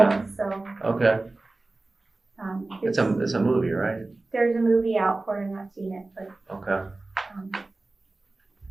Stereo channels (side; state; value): left; quieter; 3.1 dB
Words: Yeah. so. Okay. It's It's a movie, right? There's a movie out for it, I've not seen it, but. Okay. Um,